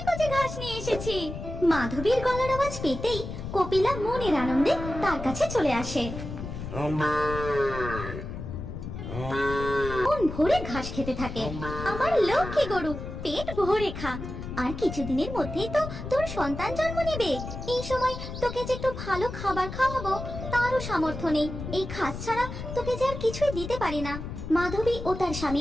কচি ঘাস নিয়ে এসেছি। মাধবীর গলার আওয়াজ পেতেই কপিলা মনের আনন্দে তার কাছে চলে আসে। মন ভরে ঘাস খেতে থাকে। আমার লক্ষ্মী গরু, পেট ভরে খা, আর কিছুদিনের মধ্যেই তো তোর সন্তান জন্ম নেবে। এই সময় তোকে যে একটু ভালো খাবার খাওয়াবো তারও সামর্থ্য নেই। এই ঘাস ছাড়া তোকে যে আর কিছুই দিতে পারি না। মাধবী ও তার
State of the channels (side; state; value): left; noise; rumble, 8 dB below the sound